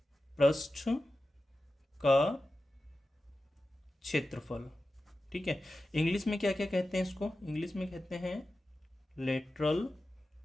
पृष्ठ का क्षेत्रफल। ठीक है, इंग्लिश में क्या क्या कहते हैं इसको, इंग्लिश में कहते हैं लेटरल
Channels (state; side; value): normal; both; correlation 0.93